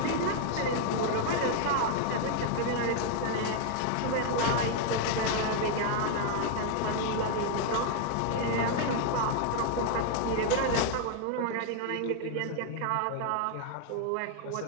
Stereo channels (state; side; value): different; both; correlation 0.00